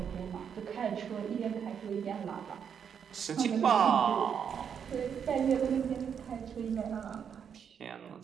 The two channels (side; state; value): left; quieter; 7.6 dB